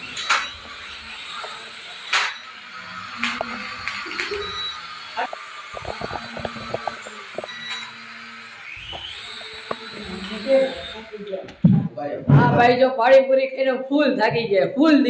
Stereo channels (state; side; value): identical; both; correlation 1.00